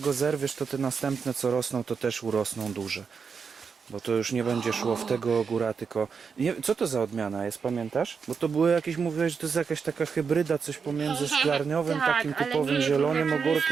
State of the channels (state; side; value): quieter; left; 5.8 dB